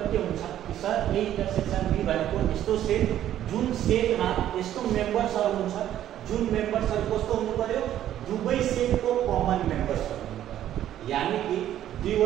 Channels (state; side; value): quieter; left; 11.8 dB